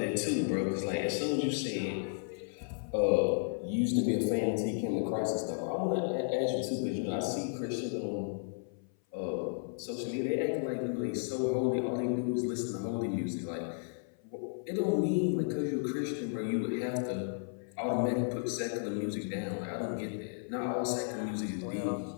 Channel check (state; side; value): silent; right; 55 dB below the other